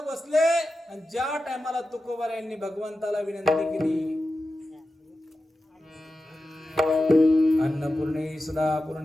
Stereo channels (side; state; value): both; normal; correlation 0.92